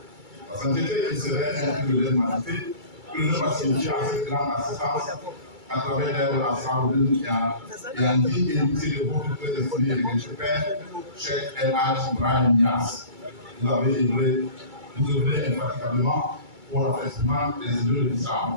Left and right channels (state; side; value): late; left; 2.3 ms